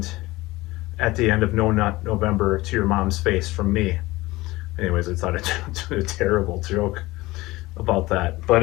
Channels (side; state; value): right; quieter; 19.7 dB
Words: at the end of No Nut November to your mom's face from me. Anyways, I thought I'd do a terrible joke about that. But